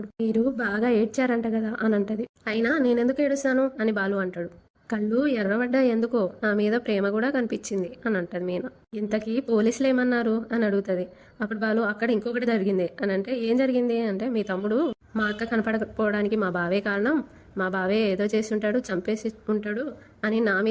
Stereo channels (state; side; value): identical; both; correlation 1.00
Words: మీరు బాగా ఏడ్చారంట కదా అని అంటది. అయినా నేనెందుకు ఏడుస్తాను అని బాలు అంటాడు. కళ్ళు ఎర్రబడ్డా ఎందుకో నా మీద ప్రేమ కూడా కనిపించింది అని అంటది మీనా. ఇంతకీ పోలీసులు ఏమన్నారు అని అడుగుతుంది. అప్పుడు బాలు అక్కడ ఇంకొకటి జరిగింది అని అంటే ఏం జరిగింది అంటే మీ తమ్ముడు మా అక్క కనపడకపోవడానికి మా బావే కారణం, మా బావే ఏదో చేసి ఉంటాడు, చంపేసి ఉంటాడు అని నా